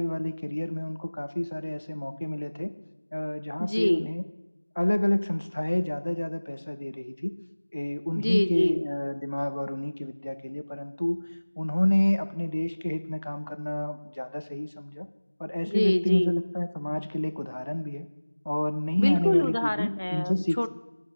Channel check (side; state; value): both; inverted; correlation -1.00